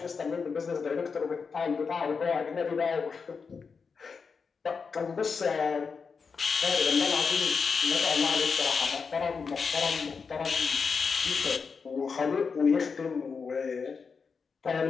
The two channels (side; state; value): right; quieter; 5.4 dB